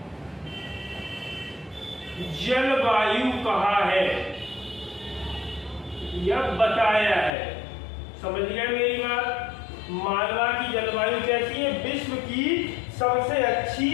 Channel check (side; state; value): right; drops out; at 7.3 s